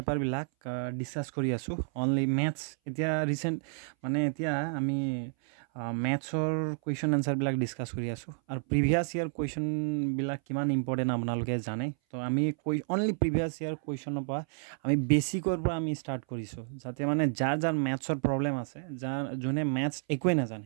ডিছকাছ কৰি আছোঁ। অনলি মেথছ এতিয়া ৰিচেণ্ট এতিয়া আমি মেথছৰ কুৱেশ্যন এনচাৰবিলাক ডিছকাছ কৰি আছোঁ। আৰু প্ৰিভিয়াছ ইয়াৰ কুৱেশ্যনবিলাক কিমান ইম্পৰ্টেণ্ট আপোনালোকে জানে। তো আমি অনলি প্ৰিভিয়াছ ইয়াৰ কুৱেশ্যনৰ পৰা আমি বেছিকৰ পৰা আমি ষ্টাৰ্ট কৰিছোঁ, যাতে যাৰ মেথছৰ প্ৰব্লেম আছে, যোনে মেথছ একোৱে নাজানে,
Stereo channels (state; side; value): silent; left; 57 dB below the other